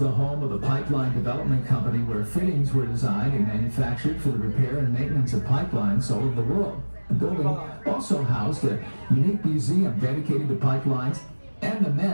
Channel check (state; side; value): inverted; both; correlation -1.00